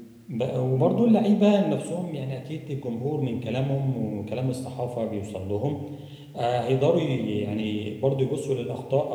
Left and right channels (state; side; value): identical; both; correlation 1.00